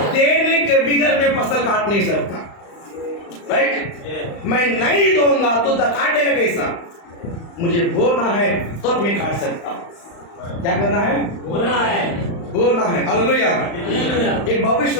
देने के बिगड़ में फसल काट नहीं सकता, राइट? मैं नहीं दूंगा तो काटेगा कैसा? मुझे बोना है तब मैं काट सकता हूं। क्या करना है? बोला है। बोलना है। हालेलुया। एक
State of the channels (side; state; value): right; late; 35 ms